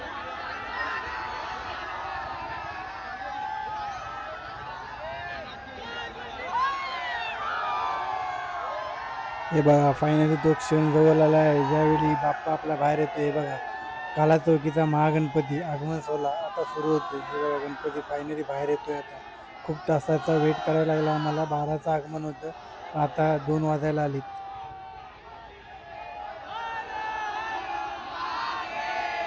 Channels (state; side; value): identical; both; correlation 1.00